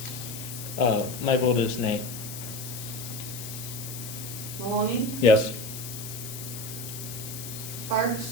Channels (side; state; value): left; noise; hiss, 9 dB below the sound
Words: My vote is nay. Maloney, Yes.